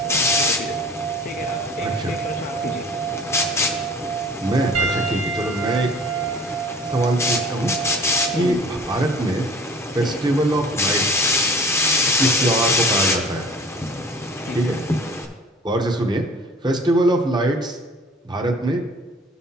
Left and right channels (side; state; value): both; normal; correlation 0.47